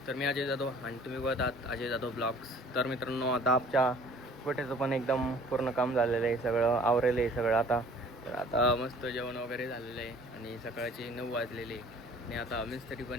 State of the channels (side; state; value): both; normal; correlation 0.52